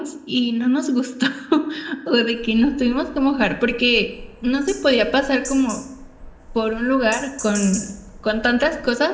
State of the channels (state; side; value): identical; both; correlation 1.00